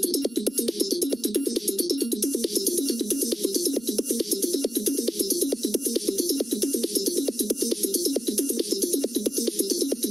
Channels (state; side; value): normal; both; correlation 0.97